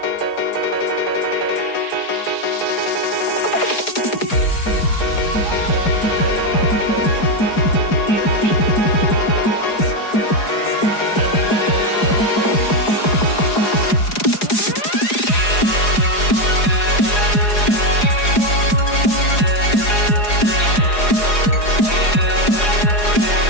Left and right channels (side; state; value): right; late; 4.8 ms